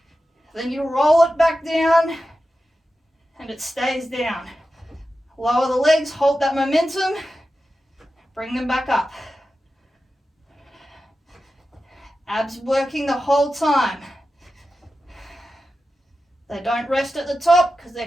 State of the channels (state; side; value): normal; both; correlation 0.92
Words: then you roll it back down and it stays down. Lower the legs, hold that momentum, bring them back up. Abs working the whole time. They don't rest at the top because